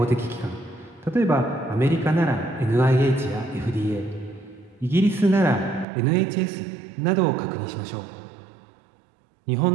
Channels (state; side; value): drops out; left; at 5.9 s